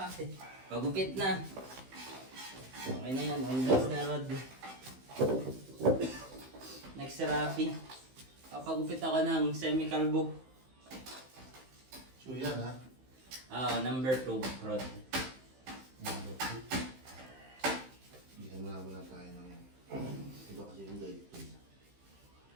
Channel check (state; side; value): late; left; 15 ms